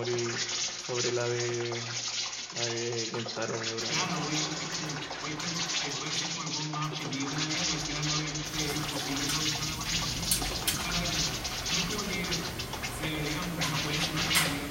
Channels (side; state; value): both; identical; correlation 1.00